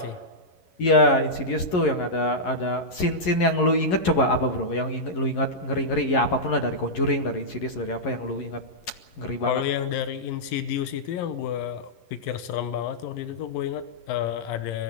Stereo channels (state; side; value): late; right; 11 ms